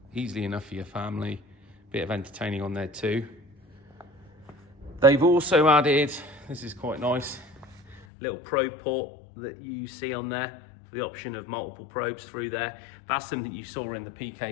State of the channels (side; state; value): right; drops out; at 8.1 s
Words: Easily enough for your family. Bit of entertaining on there too. They've also added, this is quite nice, little probe port that you see on there, for the option of multiple probes through there. That's something you saw in the